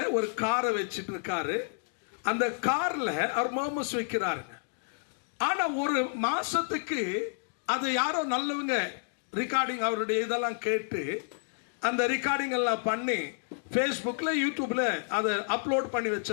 ஒரு காரை வச்சிட்டு இருக்காரு. அந்த கார்ல அவர் மோமஸ் வைக்கிறாருங்க. ஆனா ஒரு மாசத்துக்கு அதை யாரோ நல்லவங்க ரெக்கார்டிங் அவருடைய இதெல்லாம் கேட்டு அந்த ரெக்கார்டிங் எல்லாம் பண்ணி ஃபேஸ்புக்ல யூடியூப்ல அதை அப்லோட் பண்ணி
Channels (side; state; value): right; silent; digital silence